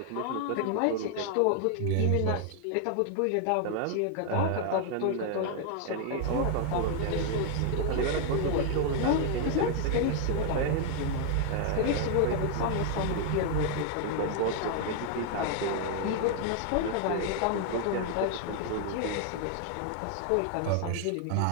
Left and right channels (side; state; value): both; different; correlation 0.00